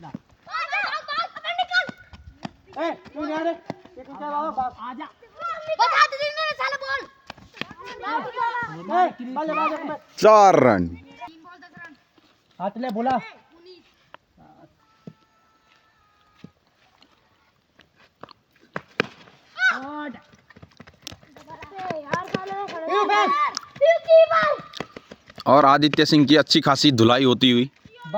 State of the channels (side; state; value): both; identical; correlation 1.00